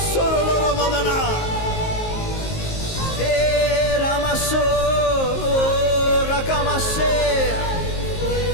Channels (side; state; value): right; late; 19 ms